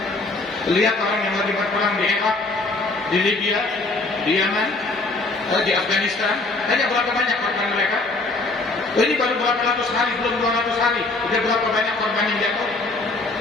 Lihat orang yang lagi berperang di Irak, di Libya, di Yaman, di Afghanistan. Tanya berapa banyak korban mereka? Ini baru berapa ratus hari, belum 200 hari. Udah berapa banyak korban yang jatuh?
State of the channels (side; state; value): right; quieter; 3.3 dB